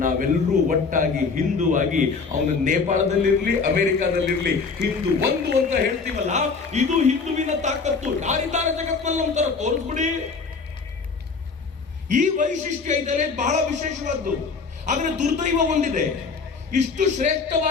ನಾವೆಲ್ಲರೂ ಒಟ್ಟಾಗಿ ಹಿಂದೂ ಆಗಿ ಅವನು ನೇಪಾಳದಲ್ಲಿರ್ಲಿ ಅಮೆರಿಕಾದಲ್ಲಿರ್ಲಿ ಹಿಂದೂ ಒಂದು ಅಂತ ಹೇಳ್ತೀವಲ್ಲ, ಇದು ಹಿಂದುವಿನ ತಾಕತ್ತು. ಯಾರಿದ್ದಾರೆ ಜಗತ್ನಲ್ಲಿ ಒಂಥರ ತೋರಿಸ್ಬಿಡಿ. ಈ ವೈಶಿಷ್ಟ್ಯ ಇದ್ದರೆ ಬಹಳ ವಿಶೇಷವಾದ್ದು. ಆದ್ರೆ ದುರ್ದೈವ ಒಂದಿದೆ, ಇಷ್ಟು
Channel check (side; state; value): right; quieter; 4.8 dB